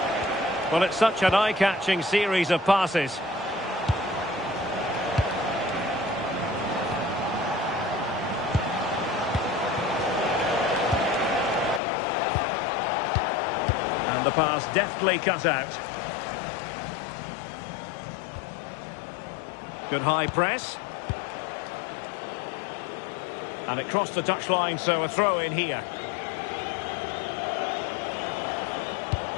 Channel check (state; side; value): drops out; right; at 11.8 s